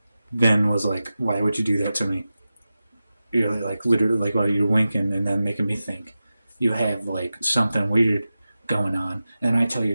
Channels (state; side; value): inverted; both; correlation -0.94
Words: then was like, "Why would you do that to me? You're like literally like while you're winking and then making me think you have like something weird going on." And I tell